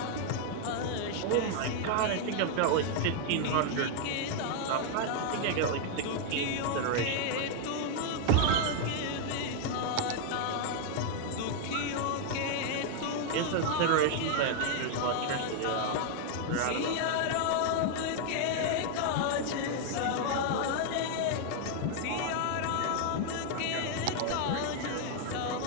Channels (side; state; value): both; different; correlation 0.00